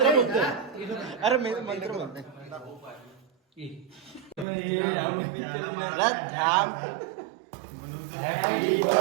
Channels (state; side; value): drops out; left; at 4.5 s